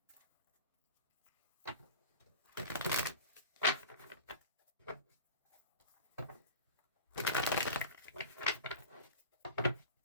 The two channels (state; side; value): inverted; both; correlation -0.34